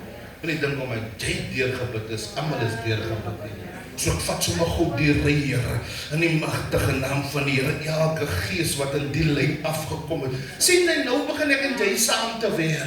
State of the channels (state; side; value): identical; both; correlation 1.00